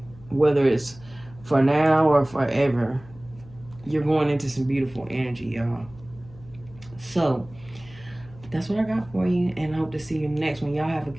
whether it's for now or forever. You're going into some beautiful energy, y'all. So that's what I got for you, and I hope to see you next one. Y'all have a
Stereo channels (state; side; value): noise; left; hum, 21 dB below the sound